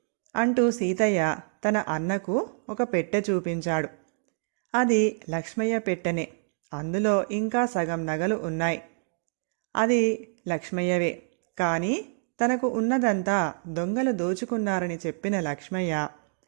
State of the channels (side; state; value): left; silent; digital silence